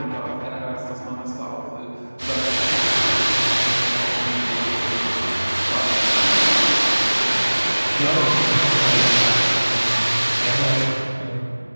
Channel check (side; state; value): both; inverted; correlation -1.00